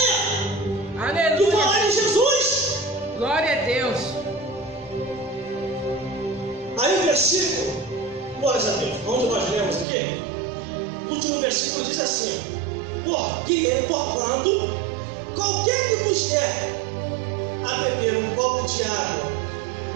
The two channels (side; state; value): left; drops out; at 9.9 s